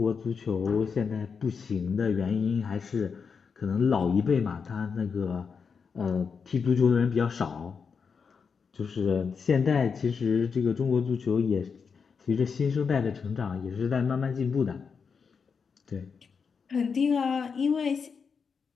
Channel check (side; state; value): right; quieter; 5.8 dB